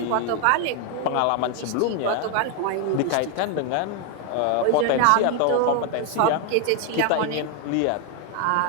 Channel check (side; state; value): both; different; correlation 0.01